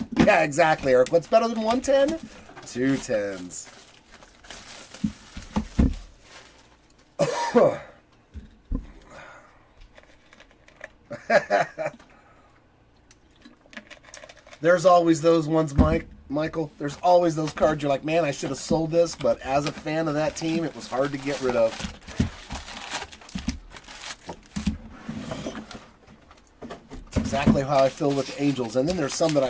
Yeah, exactly, Eric. What's better than 110? 2 10s. There's always those ones, Michael. There's always those cards you're like, man, I should have sold this, but as a fan of that team, it was hard to get rid of. It's exactly how I feel with the Angels. And then there's some that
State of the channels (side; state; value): both; identical; correlation 1.00